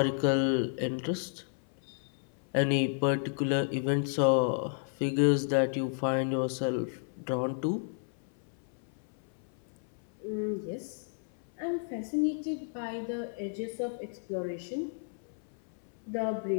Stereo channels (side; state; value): right; silent; 56 dB below the other